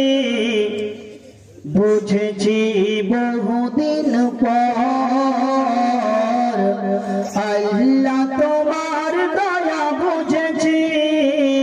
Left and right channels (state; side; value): identical; both; correlation 1.00